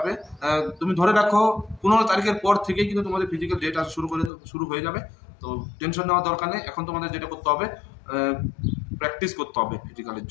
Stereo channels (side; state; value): right; drops out; at 4.3 s